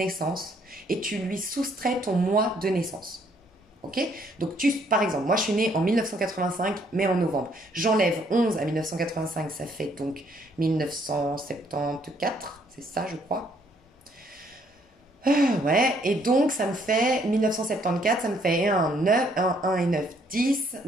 et tu lui soustrais ton mois de naissance. Ok? Donc, par exemple, moi je suis née en 1985, mais en novembre. J'enlève 11 à 1985, ça fait donc 1974, c'est ça, je crois. Ouais, et donc ça me fait 1974, ça me fait 1 et 9, 10,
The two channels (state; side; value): normal; both; correlation 0.67